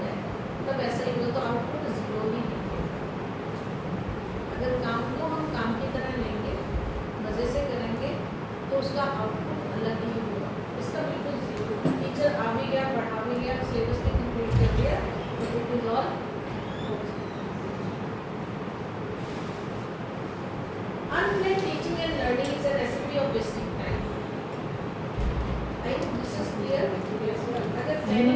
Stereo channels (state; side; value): identical; both; correlation 1.00